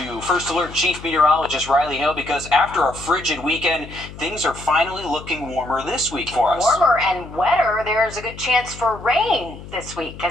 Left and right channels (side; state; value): left; noise; hum, 15 dB below the sound